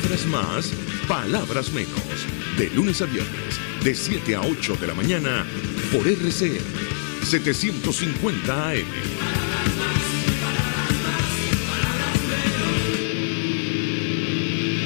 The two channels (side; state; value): right; silent; digital silence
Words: más, palabras menos. De lunes a viernes, de 7 a 8 de la mañana, por RCN 750 AM.